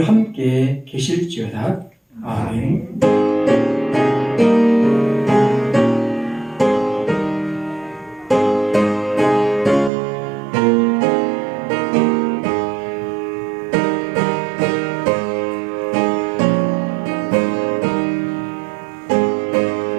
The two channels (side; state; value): left; drops out; at 9.9 s